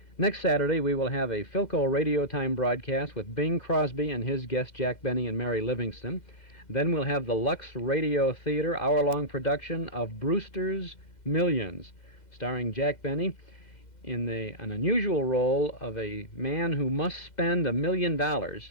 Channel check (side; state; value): right; late; 2.1 ms